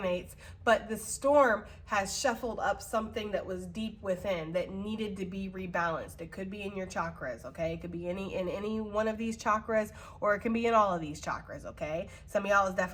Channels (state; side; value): identical; both; correlation 1.00